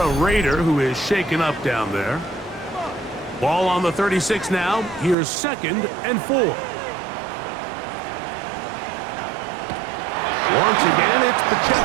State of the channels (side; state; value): left; drops out; at 5.2 s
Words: Raider who is shaken up down there. Ball on the 36 now. Here's 2nd and 4. Once again, it's